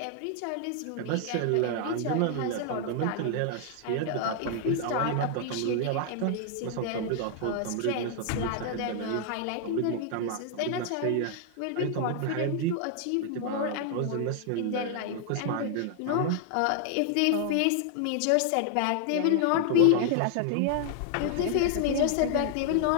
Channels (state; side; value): different; both; correlation 0.00